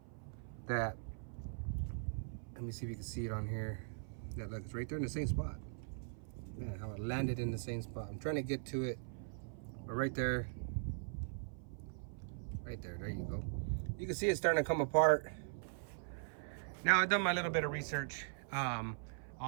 that. Let me see if you can see it on here. Yeah, look, it's right there in the same spot. Man, how it landed in the same spot. I'm trying to get to it, but right there, there you go. You can see it's starting to come apart. Now I've done my little bit of research on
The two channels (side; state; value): left; silent; 51 dB below the other